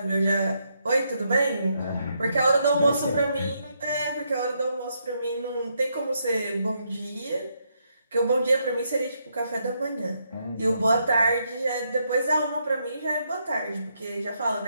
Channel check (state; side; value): inverted; both; correlation -0.78